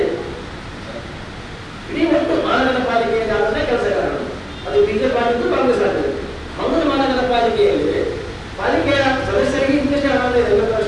ಇಡೀ ಒಟ್ಟು ಮಹಾನಗರ ಪಾಲಿಕೆಯಲ್ಲಿ ಆದಂತಹ ಕೆಲಸಗಾರರು, ಅದು ಬಿಜೆಪಿ ಆಗಿದ್ದು ಕಾಂಗ್ರೆಸ್ ಆಗಿದೆ. ಮಂಗಳೂರು ಮಹಾನಗರ ಪಾಲಿಕೆಯಲ್ಲಿ ಪಾಲಿಕೆಯ ಸದಸ್ಯರಿಗೆ ಇಂಗ್ಲಿಷ್ 50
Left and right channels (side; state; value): both; identical; correlation 1.00